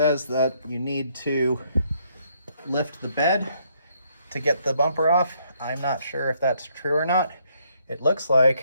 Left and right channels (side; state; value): both; inverted; correlation -0.70